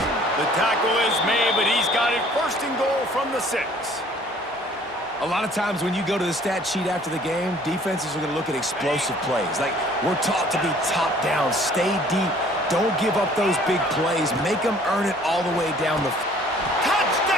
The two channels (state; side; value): normal; both; correlation 0.55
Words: The tackle is made, but he's got it 1st and goal from the 6. A lot of times when you go to the stat sheet after the game, defenses are going to look at explosive plays. Like, we're taught to be top down, stay deep, don't give up those big plays, make them earn it all the way down the field.